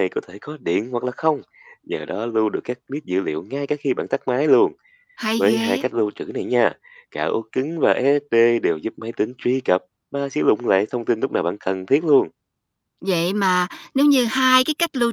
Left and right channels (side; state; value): both; identical; correlation 1.00